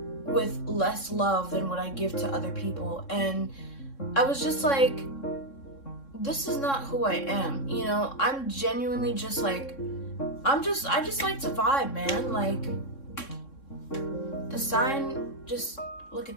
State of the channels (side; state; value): right; late; 3.6 ms